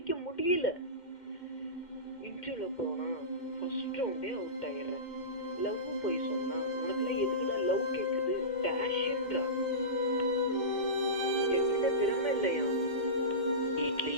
முடியல. இன்டர்வியூல போனா ஃபர்ஸ்ட் ரவுண்டே அவுட் ஆயிடுறேன். லவ் போய் சொன்னா உனக்குலாம் எதுக்குடா லவ் கேக்குது டேஷ்ன்றா. என்கிட்ட திறமை இல்லையா?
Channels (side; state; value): right; late; 2.2 ms